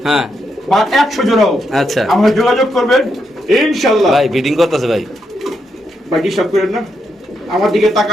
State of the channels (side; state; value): both; normal; correlation 0.81